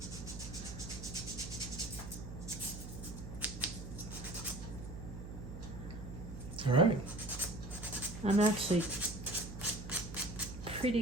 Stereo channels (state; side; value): noise; right; hum, 9 dB below the sound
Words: All right. I'm actually pretty